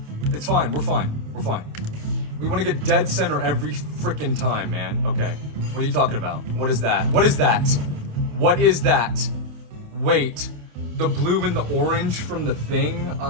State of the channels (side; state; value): left; late; 28 ms